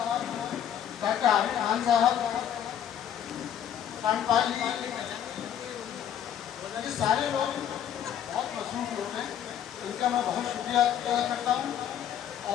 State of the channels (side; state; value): right; quieter; 9.8 dB